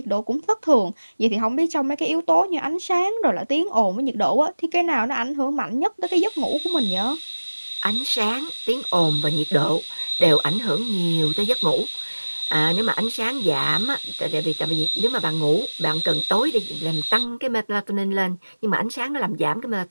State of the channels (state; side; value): inverted; both; correlation -1.00